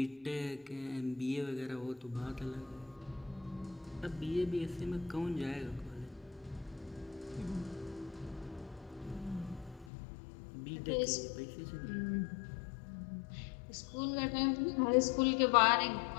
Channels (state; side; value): drops out; right; at 9.9 s